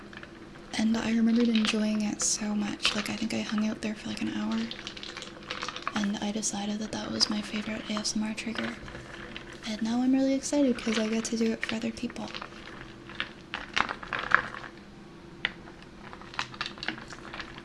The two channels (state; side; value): identical; both; correlation 1.00